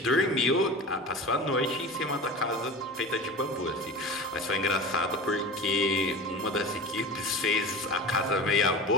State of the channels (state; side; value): normal; both; correlation 0.33